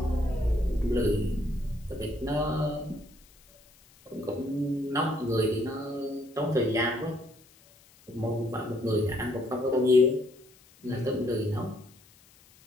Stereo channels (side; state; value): left; noise; hiss, 28 dB below the sound